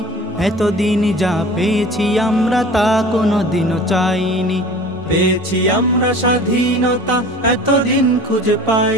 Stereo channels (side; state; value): both; normal; correlation 0.42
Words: এতদিন যা পেয়েছি আমরা তা কোনোদিনও চাইনি। পেয়েছি আমরা স্বাধীনতা, এতদিন খুঁজে